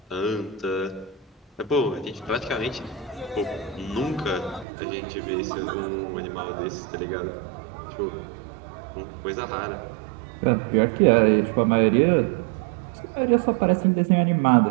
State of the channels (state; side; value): drops out; left; at 4.7 s